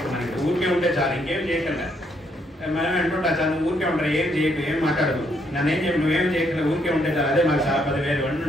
ఊరికే ఉంటే చాలు, ఇంకేం చేయకుండా మనం అంటుంటా చాలు, నువ్వు ఊరికే ఉంటారు, ఏం చేయకు, ఏం మాట్లాడదు, నన్ను ఏం చెప్పి నువ్వేం చేయట్లేదు, ఊరికే ఉంటే చాలు, అదే మాకు చాలా 10,000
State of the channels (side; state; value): both; normal; correlation 0.73